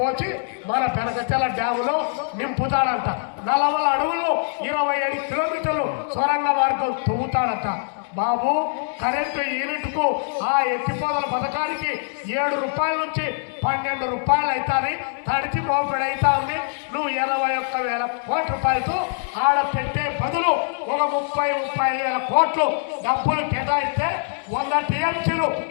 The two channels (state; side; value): silent; right; 63 dB below the other